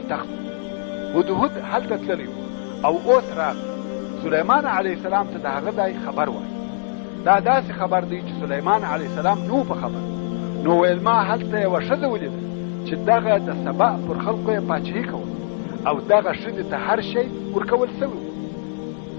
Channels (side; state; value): right; silent; 64 dB below the other